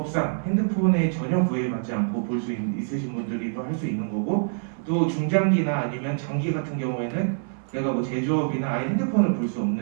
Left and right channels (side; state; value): left; silent; 57 dB below the other